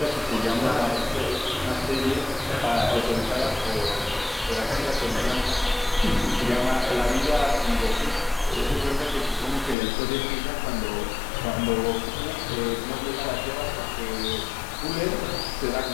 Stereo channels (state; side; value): drops out; right; at 9.8 s